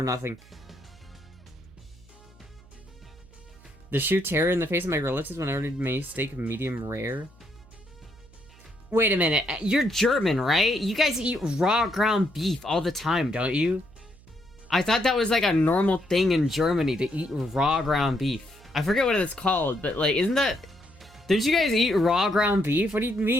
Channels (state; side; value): noise; right; hum, 24 dB below the sound